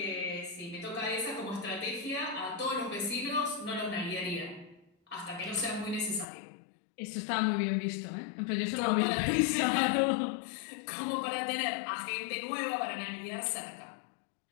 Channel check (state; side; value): drops out; right; at 6.2 s